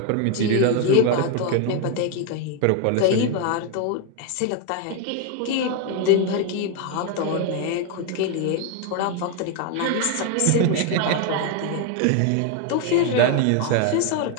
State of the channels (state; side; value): different; both; correlation 0.01